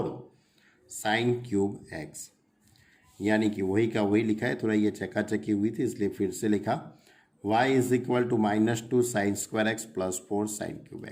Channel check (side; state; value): both; identical; correlation 1.00